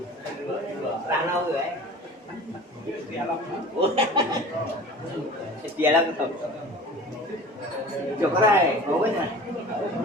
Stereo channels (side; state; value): both; normal; correlation 0.40